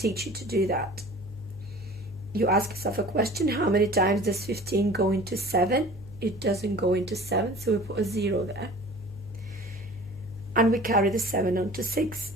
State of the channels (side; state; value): left; noise; hum, 16 dB below the sound